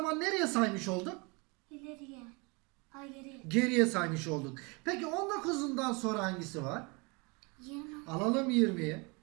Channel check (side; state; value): left; quieter; 29.3 dB